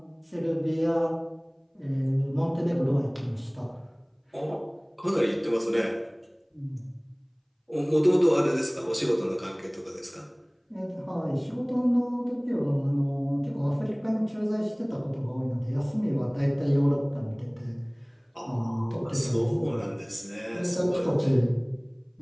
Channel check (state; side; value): identical; both; correlation 1.00